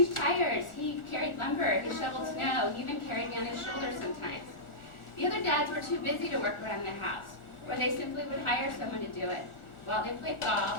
tires, he carried lumber, he shoveled snow, he even carried me on his shoulders sometimes. The other dads were too busy to work around the house, or they simply would hire someone to do it while they played golf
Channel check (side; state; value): right; late; 1.4 ms